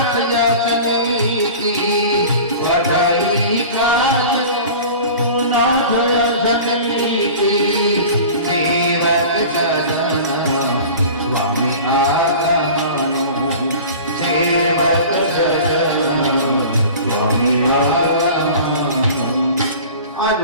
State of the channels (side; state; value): both; inverted; correlation -0.39